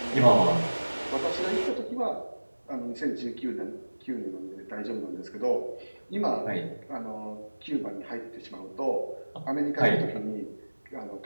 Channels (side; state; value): both; inverted; correlation -1.00